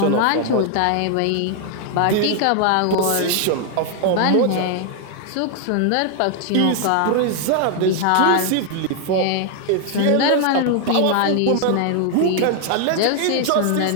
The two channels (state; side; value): different; both; correlation 0.00